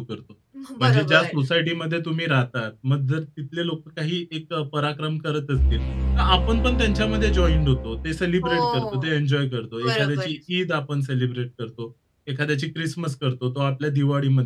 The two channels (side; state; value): both; identical; correlation 1.00